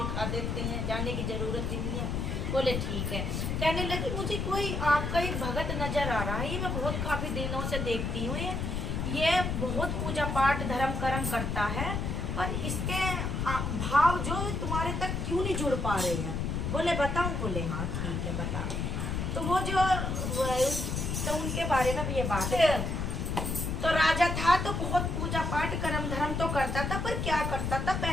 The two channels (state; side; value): noise; left; rumble, 1 dB below the sound